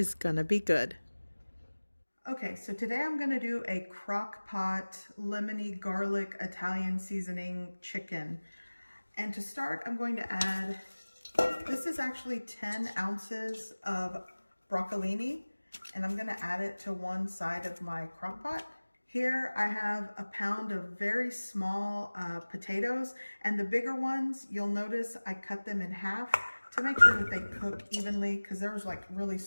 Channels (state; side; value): inverted; both; correlation -1.00